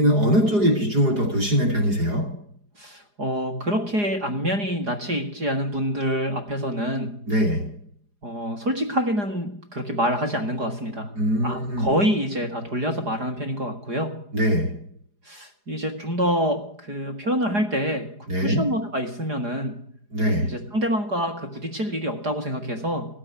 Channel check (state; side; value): late; left; 4.9 ms